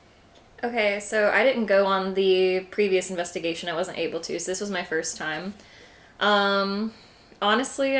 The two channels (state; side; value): identical; both; correlation 1.00